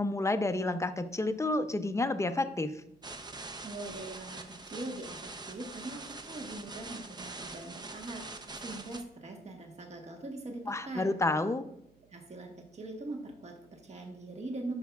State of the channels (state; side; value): noise; right; hum, 28 dB below the sound